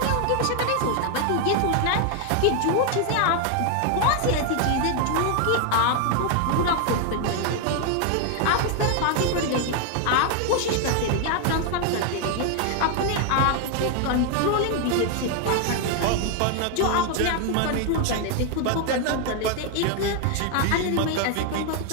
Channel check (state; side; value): different; both; correlation 0.01